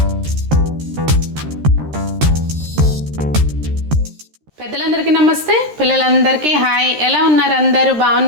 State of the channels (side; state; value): left; late; 13 ms